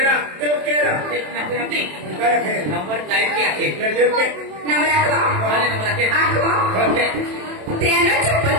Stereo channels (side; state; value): left; late; 27 ms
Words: देव केरा Nanti काय है number type क्या है? ले देव के नंबर रखो Mana number lagi? आखो Oke. तेनो चप्पल